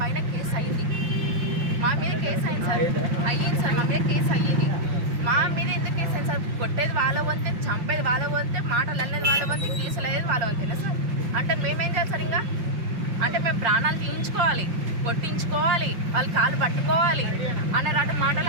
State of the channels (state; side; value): late; left; 5.7 ms